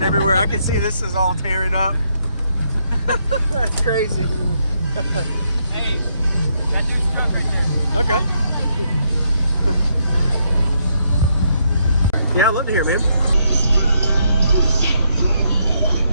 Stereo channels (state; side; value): inverted; both; correlation -0.76